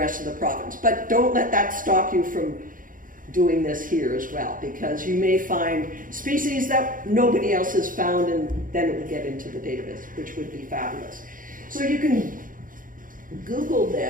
of the province. But don't let that stop you from doing this here as well, because you may find species that nobody else has found, and then it will get into the database, which would be fabulous. So you can Google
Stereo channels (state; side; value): late; left; 0.40 ms